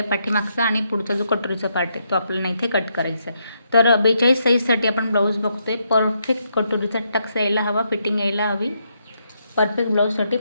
पाठीमागचा, आणि पुढचा जो कटोरीचा पार्ट आहे तो आपल्याला इथे कट करायचा आहे. तर 42 साईजसाठी आपण ब्लाऊज बघतोय. परफेक्ट कटोरीचा टक्स यायला हवा, फिटिंग यायला हवी. परफेक्ट ब्लाऊजसाठी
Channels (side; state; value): both; inverted; correlation -0.78